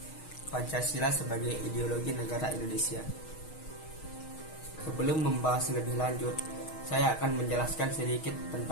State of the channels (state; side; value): late; right; 6.4 ms